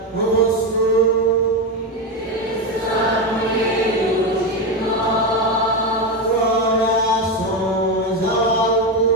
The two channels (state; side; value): normal; both; correlation 0.12